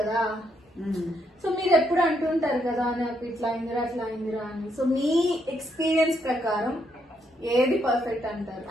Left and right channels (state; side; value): normal; both; correlation 0.76